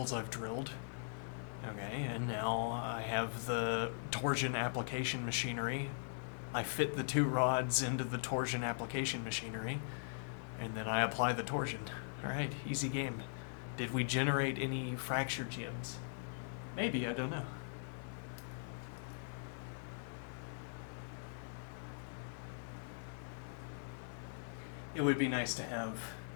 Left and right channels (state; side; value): silent; right; 51 dB below the other